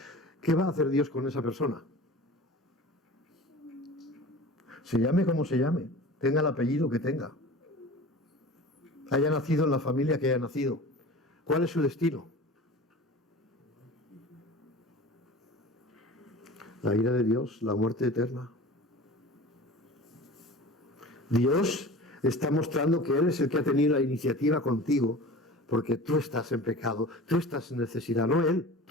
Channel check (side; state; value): both; normal; correlation 0.38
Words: ¿Qué va a hacer Dios con esa persona? Se llame como se llame, tenga el apellido que tenga, haya nacido en la familia que haya nacido. ¿Cuál es su destino? La ira de Dios, la muerte eterna. Dios está mostrando que Él es el que ha tenido la iniciativa contigo, porque tú estás en pecado, tú estás en necesidad, no Él,